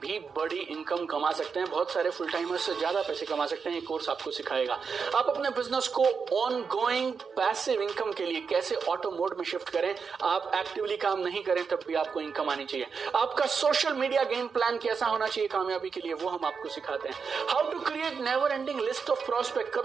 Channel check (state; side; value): quieter; left; 5.7 dB